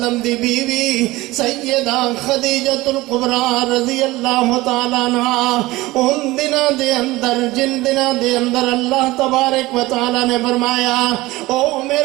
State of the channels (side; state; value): left; quieter; 19.4 dB